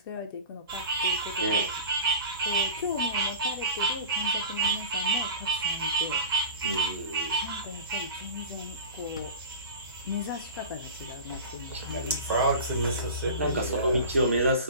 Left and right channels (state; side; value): inverted; both; correlation -0.35